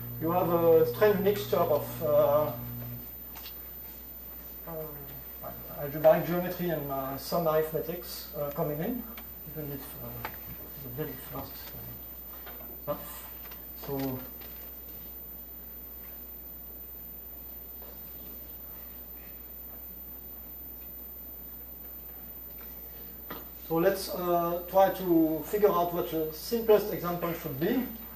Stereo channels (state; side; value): identical; both; correlation 1.00